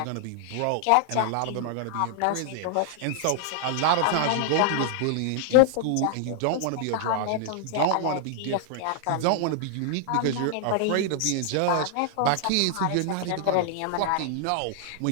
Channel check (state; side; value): different; both; correlation 0.00